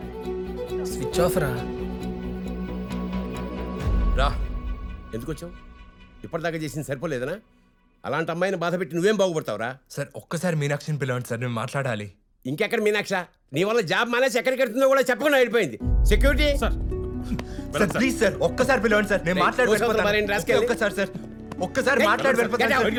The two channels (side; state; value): both; identical; correlation 1.00